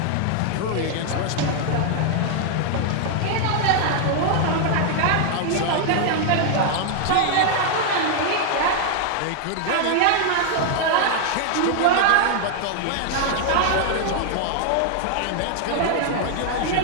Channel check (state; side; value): different; both; correlation 0.00